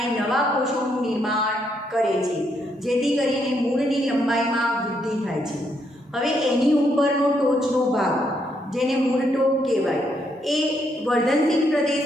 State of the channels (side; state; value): both; normal; correlation 0.76